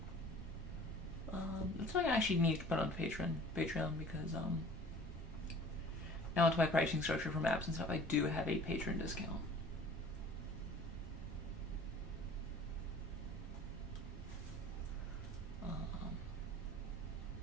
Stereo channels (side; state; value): both; normal; correlation 0.47